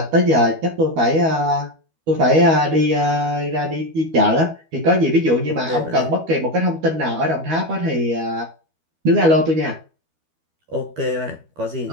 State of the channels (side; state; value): left; late; 12 ms